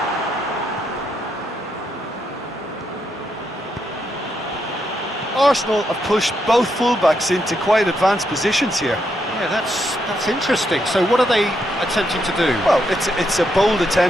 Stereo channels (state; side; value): normal; both; correlation 0.79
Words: Arsenal have pushed both fullbacks into quite advanced positions here. Yeah, that's interesting. So what are they attempting to do? Well, it's a bold